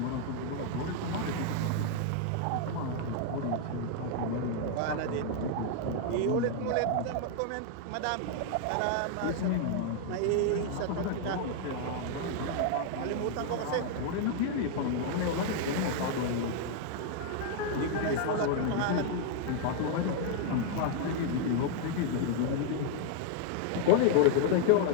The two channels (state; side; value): different; both; correlation 0.00